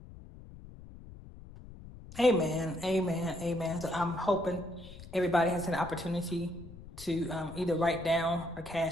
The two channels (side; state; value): left; noise; rumble, 16 dB below the sound